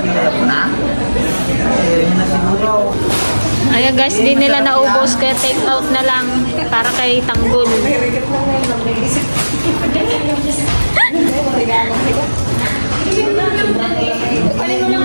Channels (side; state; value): both; inverted; correlation -1.00